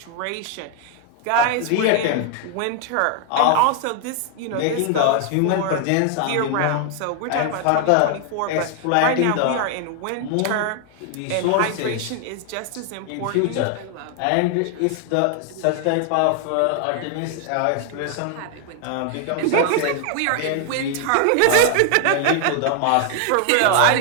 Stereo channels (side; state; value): both; different; correlation 0.00